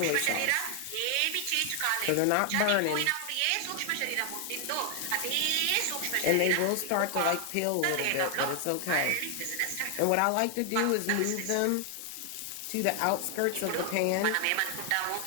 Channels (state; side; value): different; both; correlation 0.00